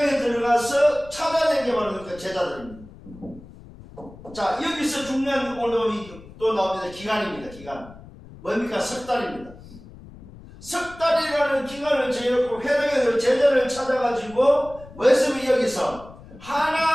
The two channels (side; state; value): left; noise; rumble, 19 dB below the sound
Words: 들어가서 찾아낸 게 바로 그 제자들입니다. 자, 여기서 중요한 오늘 또 나옵니다. 기간입니다. 기간. 뭡니까? 석 달입니다. 석 달이라는 기간을 정해놓고 회당에 제자를 찾아가지고 뭐였으면 여기서